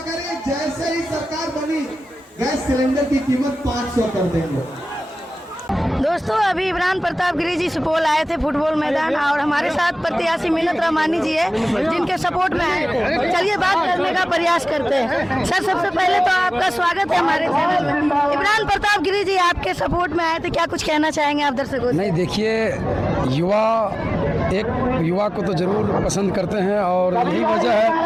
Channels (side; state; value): both; normal; correlation 0.98